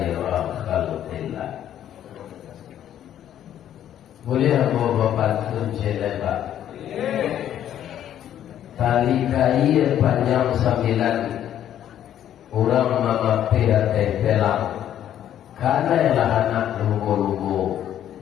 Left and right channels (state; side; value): quieter; right; 10.8 dB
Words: khalqillah. Boleh aku berpantun Pak? Tali kain panjang 9, Urang mamampir tempelang karena ialah anak lugu-lugu.